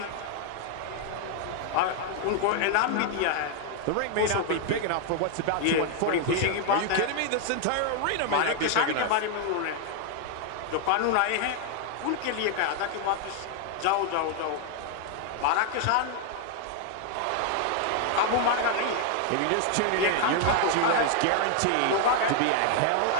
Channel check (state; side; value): different; both; correlation 0.00